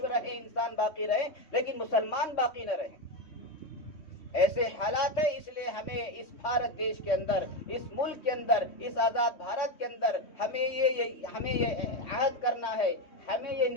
رہیں، انسان باقی رہیں لیکن مسلمان باقی نہ رہیں۔ ایسے حالات ہیں، اس لیے ہمیں اس بھارت دیش کے اندر، اس ملک کے اندر، اس آزاد بھارت کے اندر ہمیں یہ عہد کرنا ہے، ہمیں یہ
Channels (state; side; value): late; right; 3.1 ms